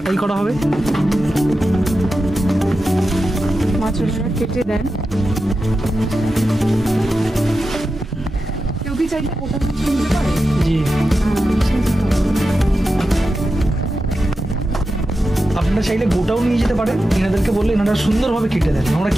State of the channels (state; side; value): normal; both; correlation 0.91